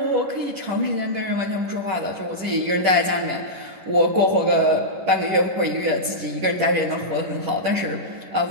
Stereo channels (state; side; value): late; left; 11 ms